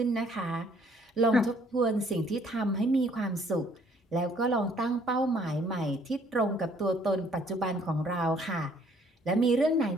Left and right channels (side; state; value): both; normal; correlation 0.62